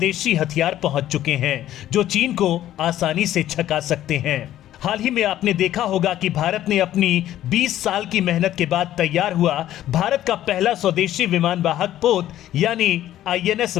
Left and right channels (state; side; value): quieter; right; 12.9 dB